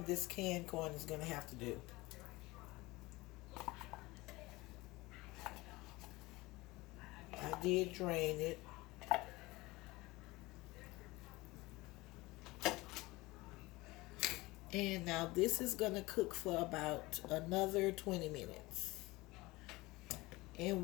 this canned corn is going to have to do. I did drain it. And now this is going to cook for about another 20 minutes. And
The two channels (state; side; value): quieter; right; 21.3 dB